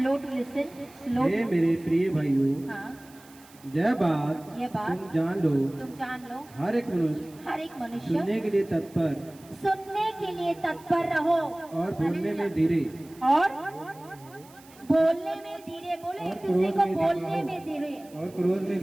टू लिसन, स्लो। हे मेरे प्रिय भाइयों, हाँ, यह बात तुम जान लो, हर एक मनुष्य सुनने के लिए तत्पर रहो, और बोलने में धीरे, बोले एक दूसरे को बोलने में धीरे, और क्रोध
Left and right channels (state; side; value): noise; right; hiss, 24 dB below the sound